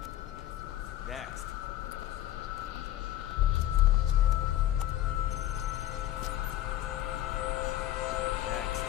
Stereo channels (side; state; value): right; quieter; 13.1 dB